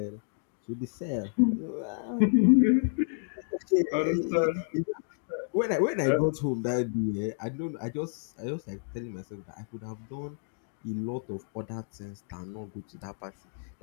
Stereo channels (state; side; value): silent; right; digital silence